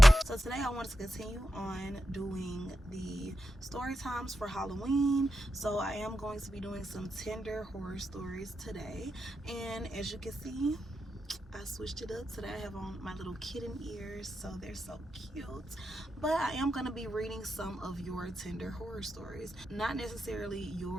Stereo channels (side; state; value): both; normal; correlation 0.88